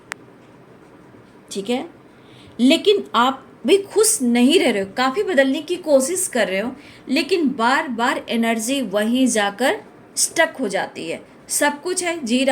ठीक है, लेकिन आप भी खुश नहीं रह रहे हो, काफ़ी बदलने की कोशिश कर रहे हो, लेकिन बार बार एनर्जी वहीं जाकर स्टक हो जाती है। सब कुछ है, जी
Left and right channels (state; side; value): identical; both; correlation 1.00